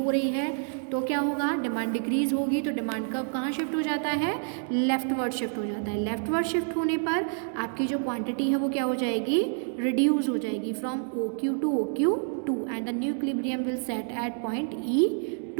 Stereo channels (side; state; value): left; silent; 59 dB below the other